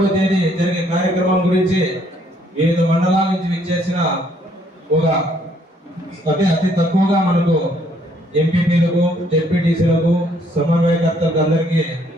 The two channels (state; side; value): normal; both; correlation 0.66